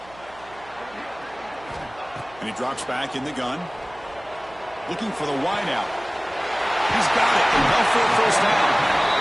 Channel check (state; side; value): noise; right; hum, 23 dB below the sound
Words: And he drops back in the gun. Looking for the wideout. He's got it. Enough for a first down.